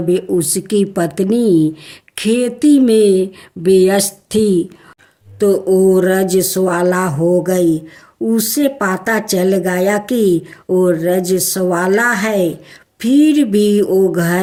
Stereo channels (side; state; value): both; identical; correlation 1.00